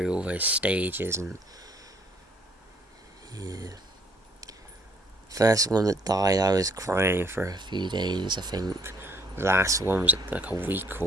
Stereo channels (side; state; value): both; normal; correlation 0.63